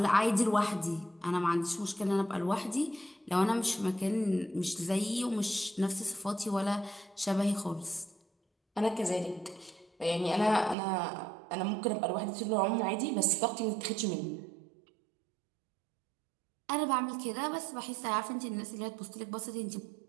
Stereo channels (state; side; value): drops out; left; at 10.8 s